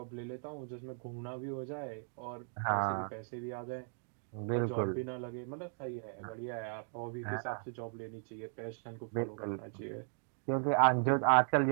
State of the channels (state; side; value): silent; left; 53 dB below the other